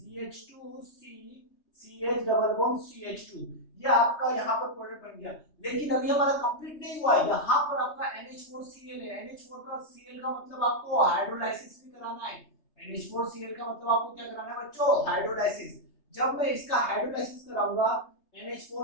CH double bond CH2, ये आपका यहाँ पर प्रोडक्ट बन गया। लेकिन अभी हमारा कंप्लीट नहीं हुआ है, यहाँ पर आपका NH4Cl है। NH4 का Cl का मतलब आपको हाइड्रोलाइसिस भी कराना है। NH4Cl का मतलब आपको क्या कराना है बच्चों, हाइड्रोलाइसिस। जब मैं इसका हाइड्रोलाइसिस कराऊंगा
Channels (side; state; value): right; late; 3.3 ms